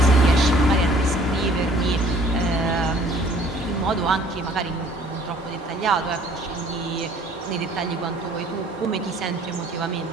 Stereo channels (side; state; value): both; normal; correlation 0.56